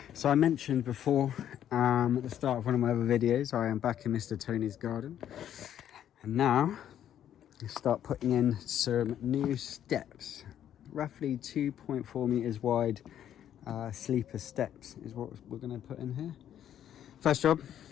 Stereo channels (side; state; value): right; quieter; 10.5 dB